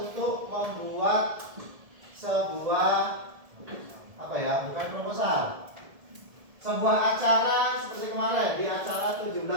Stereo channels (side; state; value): left; late; 1.7 ms